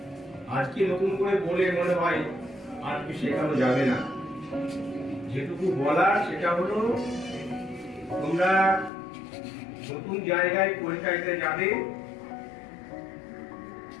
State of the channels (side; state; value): right; drops out; at 8.9 s